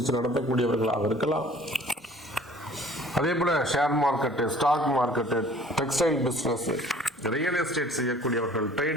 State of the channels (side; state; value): both; normal; correlation 0.51